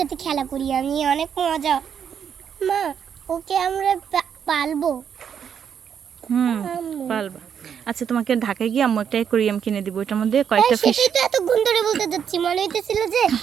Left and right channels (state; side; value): quieter; left; 7.9 dB